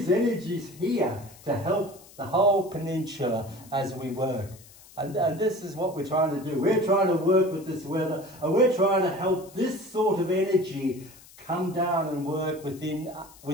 energies here to help the whole peninsula as we work. And this is what we're trying to do. We're trying to work with this weather, and we're trying to help this sort of energy come down and work within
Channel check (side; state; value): left; noise; hiss, 22 dB below the sound